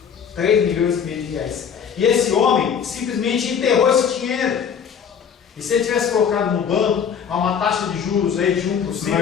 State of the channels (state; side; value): quieter; right; 7.4 dB